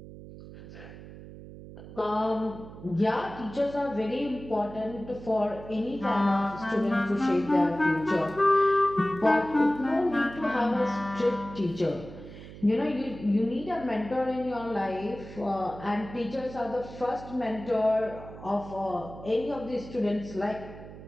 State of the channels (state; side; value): noise; right; hum, 15 dB below the sound